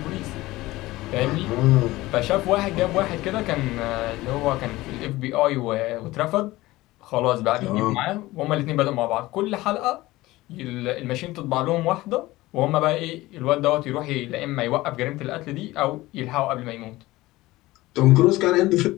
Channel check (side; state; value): right; quieter; 18.6 dB